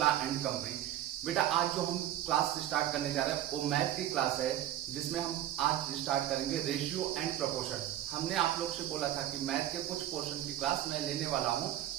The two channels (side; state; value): left; quieter; 12.5 dB